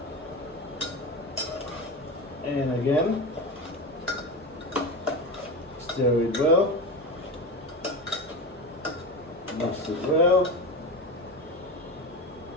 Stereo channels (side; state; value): both; normal; correlation 0.23